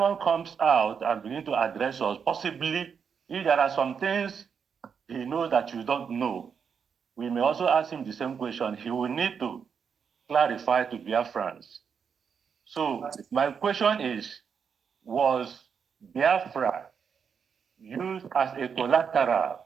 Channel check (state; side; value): quieter; left; 6.7 dB